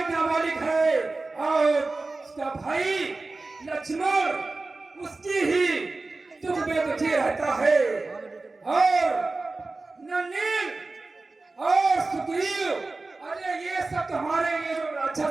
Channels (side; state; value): left; quieter; 3.4 dB